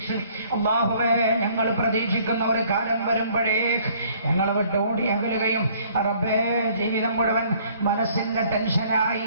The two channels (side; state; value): both; inverted; correlation -0.59